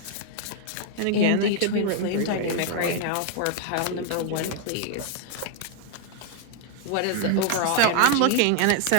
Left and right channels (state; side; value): different; both; correlation 0.00